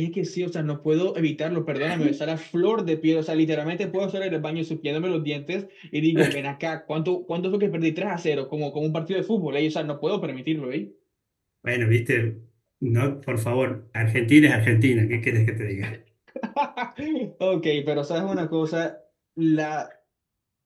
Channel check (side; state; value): both; identical; correlation 1.00